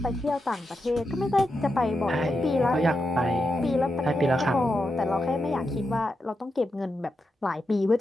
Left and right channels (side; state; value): both; normal; correlation 0.87